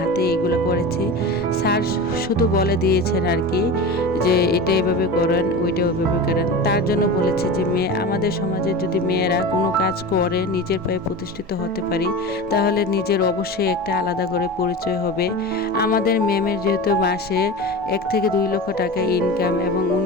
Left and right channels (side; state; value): both; normal; correlation 0.29